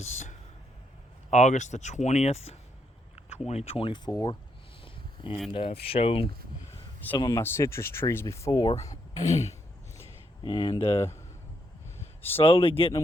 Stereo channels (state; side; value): normal; both; correlation 0.77